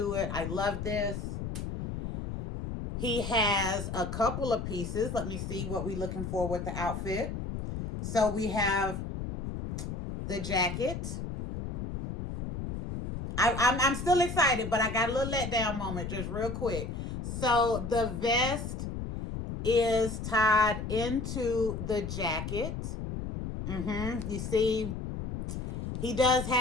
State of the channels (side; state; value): left; noise; rumble, 5 dB below the sound